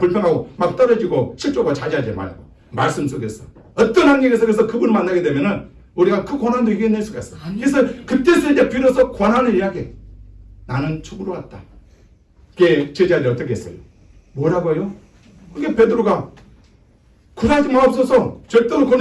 막 떨어지고 실족하고 자제하지 말고 말씀 속에서 어떤 환경에서 그래서 그분을 만나게 되면은 우리가 그 고난도 이겨낼 수가 있어. 그래서 그때서 이제 비로소 고난을 이야기해. 나는 죽으러 왔다. 그게 제자들이 어떻게 했어요? 뭐라고요? 그게 베드로가 굴하지 마옵소서. 절대로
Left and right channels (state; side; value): identical; both; correlation 1.00